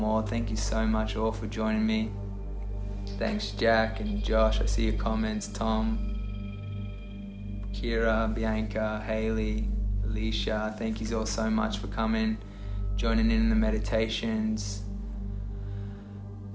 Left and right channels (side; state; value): both; identical; correlation 1.00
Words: Thank you so much all for joining me. Thanks Jack and Josh, I see your comments. Tom, Kira, Bianca, Haley, Alicia, thank you all so much for coming, joining in the meditations.